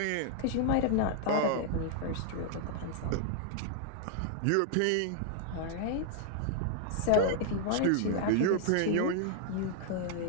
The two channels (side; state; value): both; different; correlation -0.01